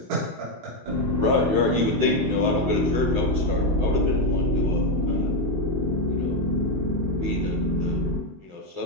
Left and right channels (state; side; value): late; left; 19 ms